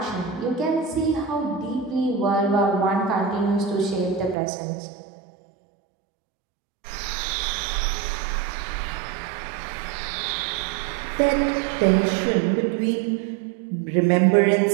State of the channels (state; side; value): drops out; left; at 4.4 s